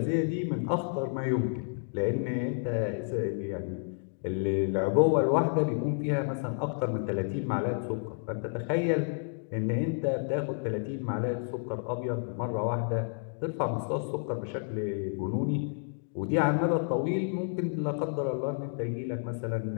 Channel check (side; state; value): right; silent; digital silence